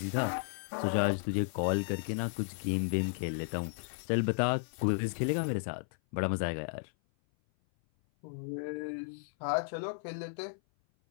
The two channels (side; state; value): right; silent; 55 dB below the other